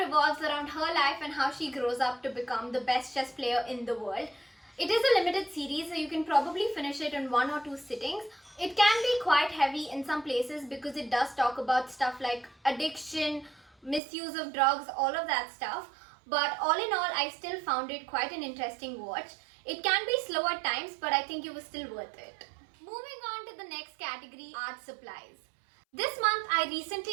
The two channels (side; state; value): left; drops out; at 14.0 s